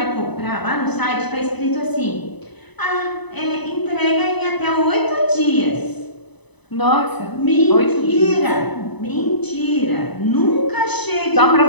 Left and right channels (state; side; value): late; right; 1.0 ms